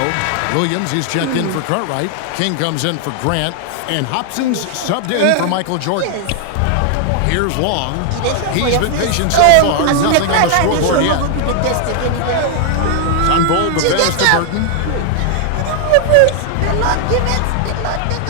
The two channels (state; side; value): different; both; correlation 0.00